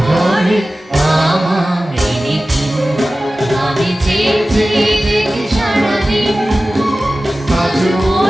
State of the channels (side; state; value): both; normal; correlation 0.96